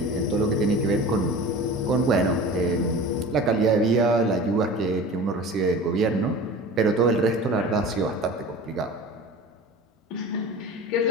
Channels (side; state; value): both; normal; correlation 0.37